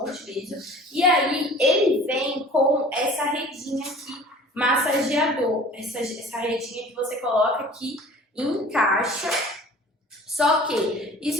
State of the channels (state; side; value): normal; both; correlation 0.46